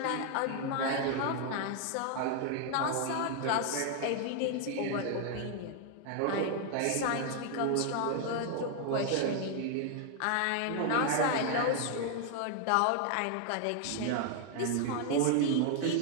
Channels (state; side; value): different; both; correlation 0.00